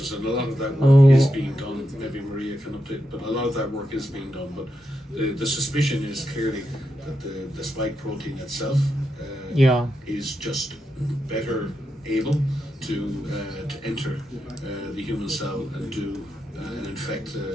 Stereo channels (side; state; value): both; normal; correlation 0.86